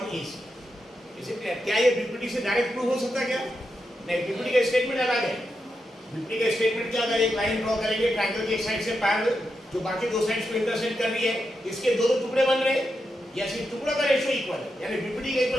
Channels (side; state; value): both; normal; correlation 0.86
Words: AC। इसे क्या ये बीपीटी से डायरेक्ट प्रूव हो सकता है क्या, नहीं, बीपीटी का स्टेटमेंट अलग है। बीपीटी का स्टेटमेंट क्या, अगर एक लाइन ड्रॉ करेंगे ट्रायंगल की एक साइड से पैरेलल जो बाकी दो साइड्स को इंटरसेक्ट कर रही है, इसके दो टुकड़े बन रहे हैं या सिर्फ टुकड़ों का रेशियो इक्वल है, यानी बीपीटी का